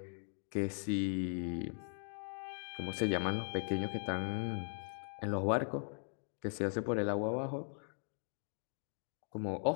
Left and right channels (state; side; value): silent; right; 51 dB below the other